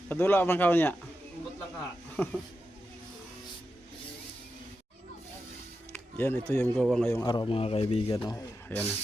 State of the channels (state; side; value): normal; both; correlation 0.89